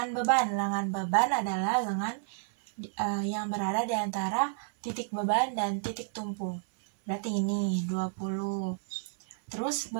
beban. Lengan beban adalah lengan yang berada di antara titik beban dan titik tumpu. Berarti ini 20. Terus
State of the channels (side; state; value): left; silent; 57 dB below the other